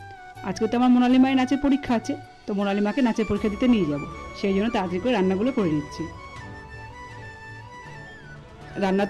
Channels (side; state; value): both; identical; correlation 1.00